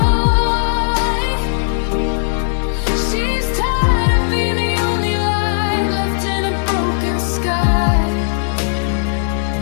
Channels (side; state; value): right; silent; digital silence